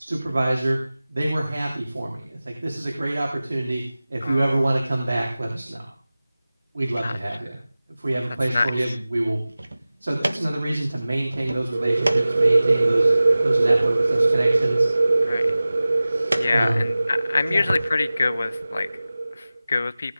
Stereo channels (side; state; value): both; inverted; correlation -0.97